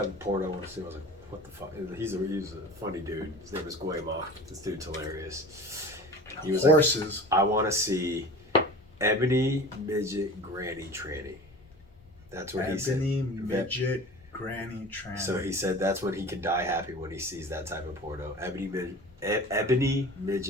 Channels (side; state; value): both; normal; correlation 0.38